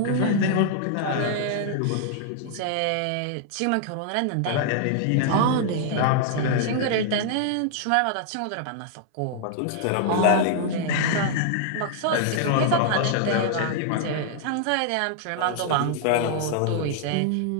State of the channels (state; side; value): different; both; correlation -0.01